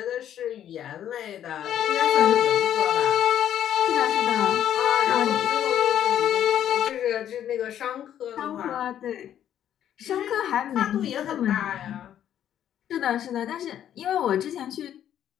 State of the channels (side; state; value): right; quieter; 10.5 dB